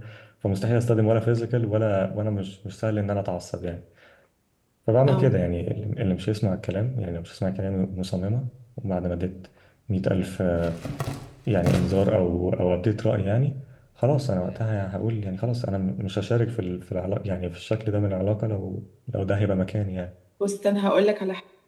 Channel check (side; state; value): both; identical; correlation 1.00